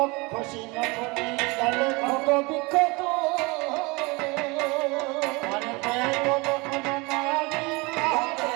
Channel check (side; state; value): left; quieter; 26.1 dB